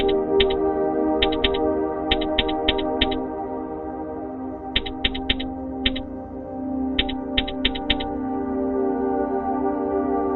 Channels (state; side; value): identical; both; correlation 1.00